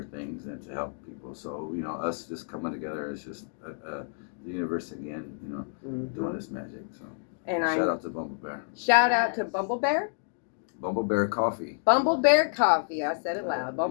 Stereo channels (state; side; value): silent; right; digital silence